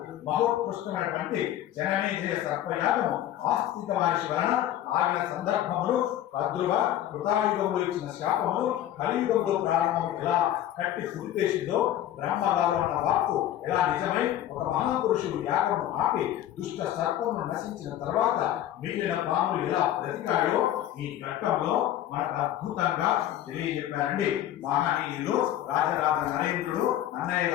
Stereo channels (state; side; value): quieter; right; 12.1 dB